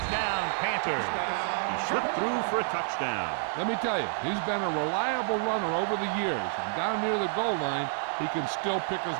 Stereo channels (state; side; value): silent; left; digital silence